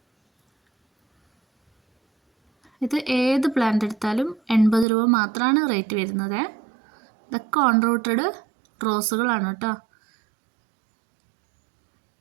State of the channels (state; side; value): drops out; left; at 4.9 s